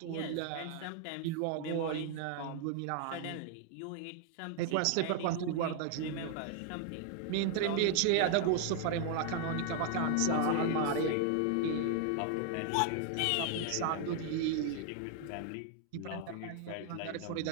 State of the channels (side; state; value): both; different; correlation 0.00